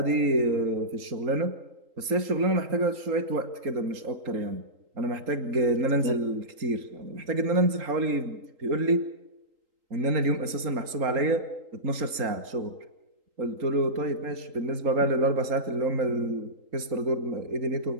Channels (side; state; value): left; late; 3.8 ms